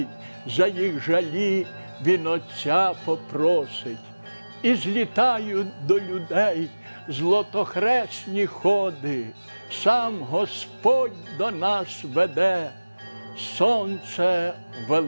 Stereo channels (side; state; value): both; inverted; correlation -1.00